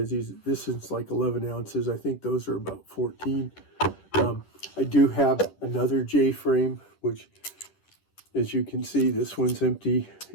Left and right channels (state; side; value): late; right; 10 ms